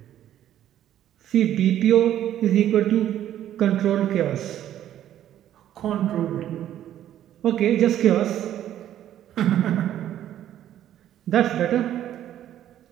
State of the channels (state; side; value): quieter; left; 11.6 dB